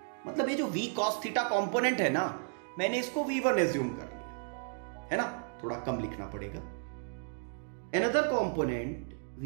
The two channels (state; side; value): silent; left; 55 dB below the other